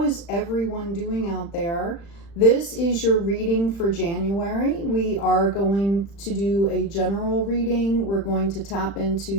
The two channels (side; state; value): right; late; 35 ms